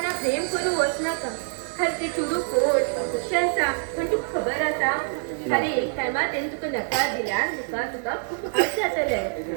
प्रेम करू वचनाका हर ते चुडू कोट कशें आसा पण तुका खबर आसा खाली एक टायमार तेणे तुका नकार दिल्यार तुका खूब वायट जातलें.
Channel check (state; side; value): silent; left; 61 dB below the other